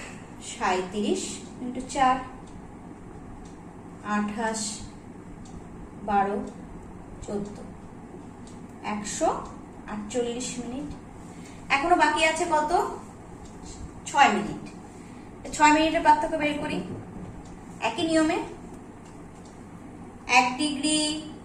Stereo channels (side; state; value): both; identical; correlation 1.00